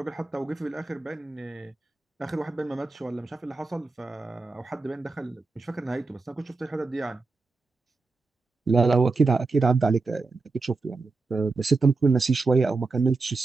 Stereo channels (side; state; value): left; quieter; 3.8 dB